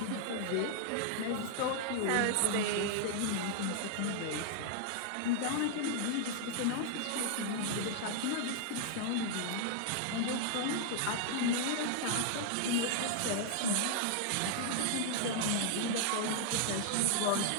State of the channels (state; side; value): different; both; correlation 0.00